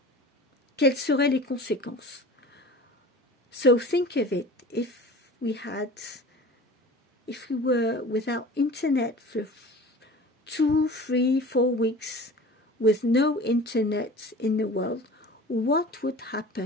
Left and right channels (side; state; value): both; normal; correlation 0.40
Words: quelles seraient les conséquences? So think of it, if we were without Internet for 2, 3, 4 weeks, with no Internet in the world, what would